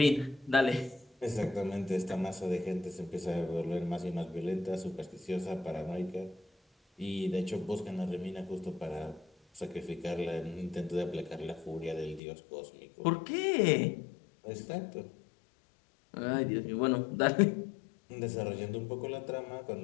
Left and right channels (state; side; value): drops out; right; at 12.2 s